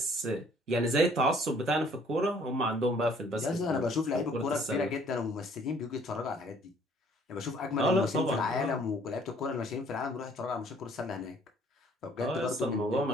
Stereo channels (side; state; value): both; normal; correlation 0.59